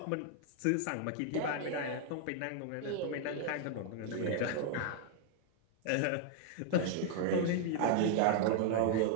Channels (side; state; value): both; different; correlation 0.00